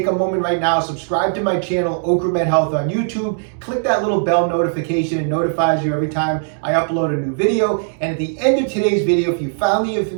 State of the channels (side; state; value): left; silent; digital silence